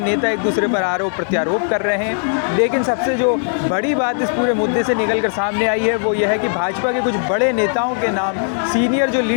नेता एक दूसरे पर आरोप प्रत्यारोप कर रहे हैं, लेकिन सबसे जो बड़ी बात इस पूरे मुद्दे से निकल कर सामने आई है वो ये है कि भाजपा के कुछ बड़े नेताओं के नाम, सीनियर जो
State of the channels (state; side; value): silent; right; 64 dB below the other